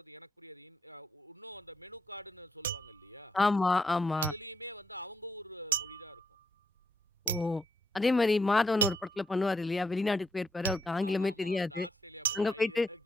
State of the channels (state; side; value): normal; both; correlation 0.75